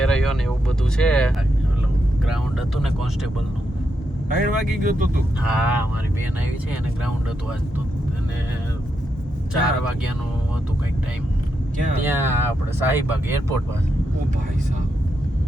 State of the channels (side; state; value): both; normal; correlation 0.83